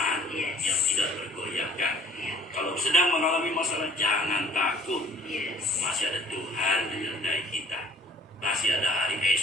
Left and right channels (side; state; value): both; normal; correlation 0.54